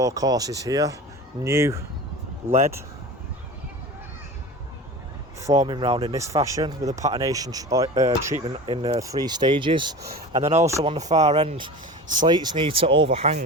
courses here. New lead forming round in this fashion with a patination treatment in 3 stages. And then also on the far end, slates need to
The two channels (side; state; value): both; normal; correlation 0.33